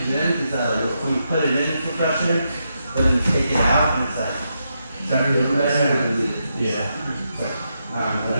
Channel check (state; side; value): inverted; both; correlation -0.83